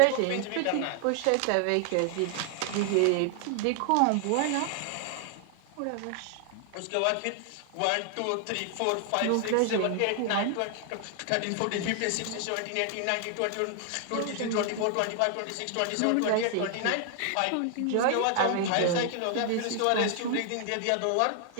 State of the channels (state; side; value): different; both; correlation 0.00